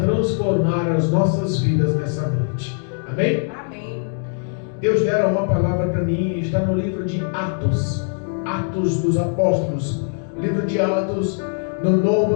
as nossas vidas nessa noite. Amém? Amém. Deus dera uma palavra para mim, está no livro de Atos, Atos dos Apóstolos, livro de Atos, no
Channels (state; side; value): silent; right; 65 dB below the other